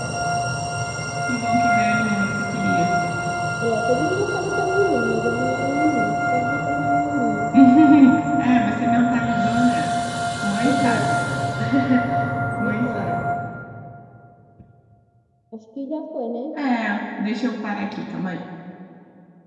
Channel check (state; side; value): identical; both; correlation 1.00